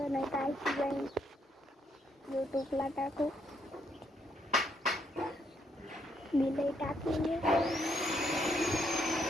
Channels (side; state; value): both; normal; correlation 0.74